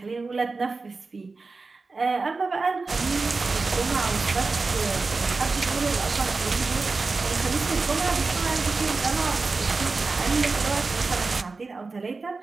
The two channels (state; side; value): quieter; left; 4.0 dB